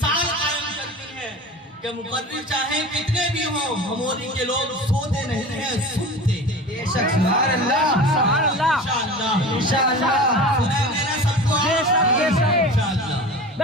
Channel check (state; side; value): normal; both; correlation 0.35